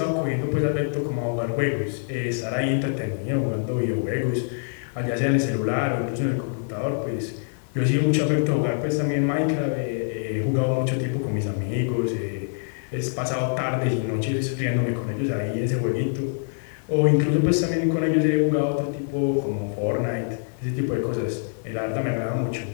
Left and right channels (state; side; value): silent; right; digital silence